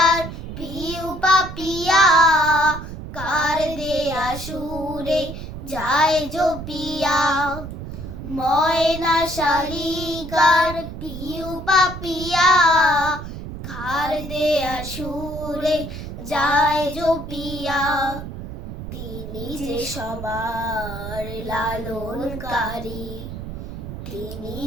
পিউ পাপিয়া, কার দেয়া সুরে যায় জপিয়া। ময়না শালিকার পিউ পাপিয়া, কার দেয়া সুরে যায় জপিয়া। তিনি যে সবার লালনকারী, তিনি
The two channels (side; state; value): right; noise; rumble, 9 dB below the sound